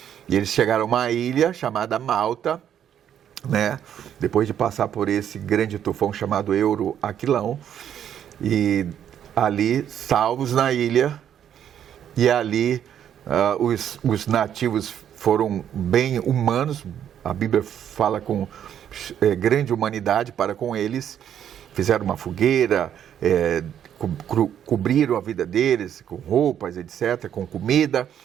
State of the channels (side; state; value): left; quieter; 9.6 dB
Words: E eles chegaram a uma ilha chamada Malta, né? Depois de passar por esse grande tufão chamado Euroaquilão. E ali, salvos na ilha, e ali os nativos foram bem humanos, a Bíblia fala com grande humanidade para com eles, fizeram uma fogueira, cobriram a vida deles com roupas, etc., com comida,